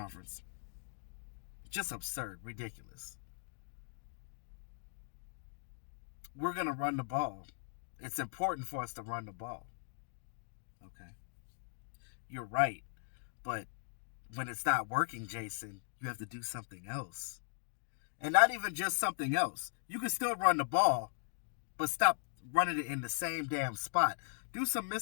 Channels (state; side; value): silent; right; digital silence